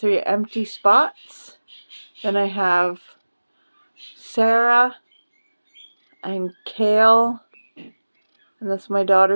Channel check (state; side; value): inverted; both; correlation -1.00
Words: empty spots. Then I have Sarah and Kale. And that's my